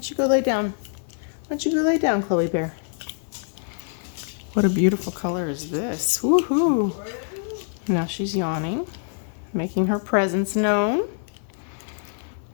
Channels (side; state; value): right; silent; digital silence